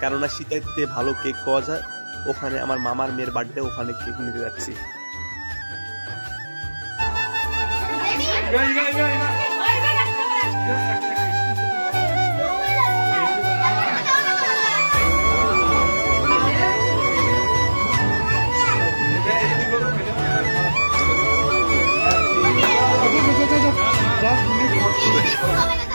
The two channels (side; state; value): both; inverted; correlation -1.00